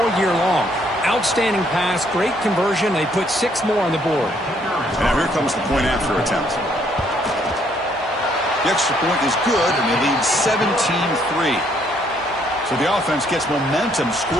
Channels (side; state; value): both; normal; correlation 0.68